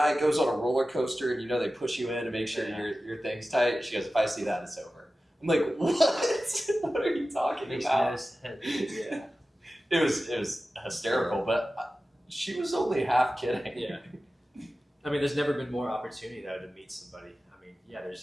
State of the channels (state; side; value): normal; both; correlation 0.95